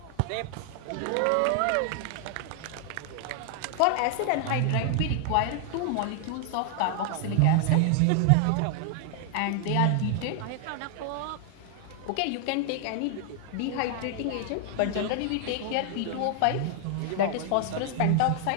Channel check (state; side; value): different; both; correlation 0.00